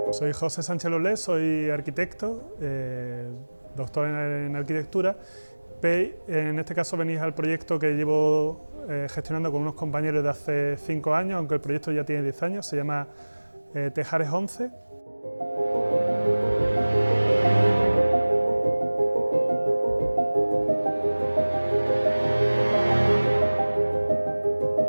José Sánchez Lolés, soy arquitecto, doctor en arquitectura. En este caso venís al proyecto que llevo gestionando con unos compañeros de hace 5 años, aunque el proyecto ya tiene 10 años, se llama Tejares 11.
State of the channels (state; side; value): inverted; both; correlation -1.00